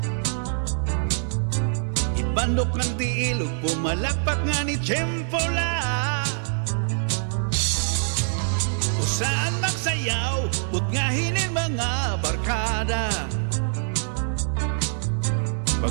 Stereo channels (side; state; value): left; silent; digital silence